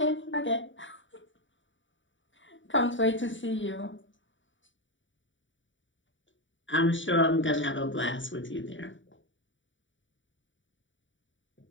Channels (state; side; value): late; right; 0.55 ms